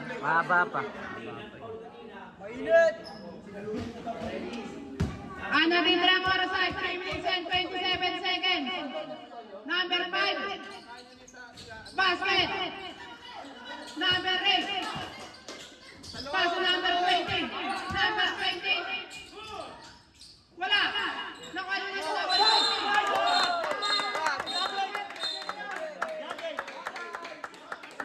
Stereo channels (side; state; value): both; identical; correlation 1.00